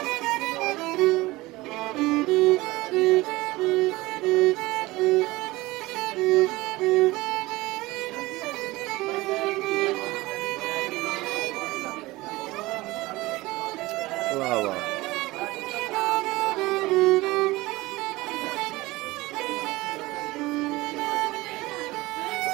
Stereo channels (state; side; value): quieter; left; 20.2 dB